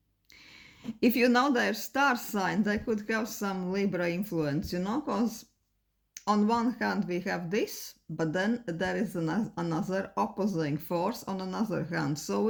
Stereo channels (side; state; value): both; identical; correlation 1.00